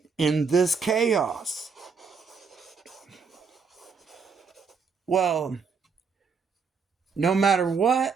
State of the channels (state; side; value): quieter; left; 5.4 dB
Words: in this chaos. Well, no matter